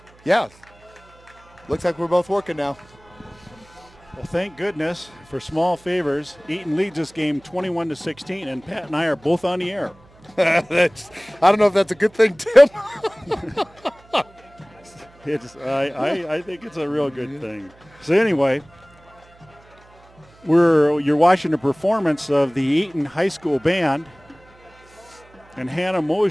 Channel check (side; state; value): right; noise; hum, 27 dB below the sound